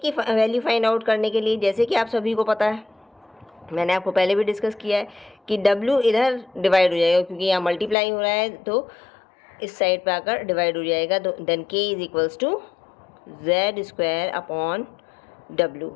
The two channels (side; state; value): right; drops out; at 8.0 s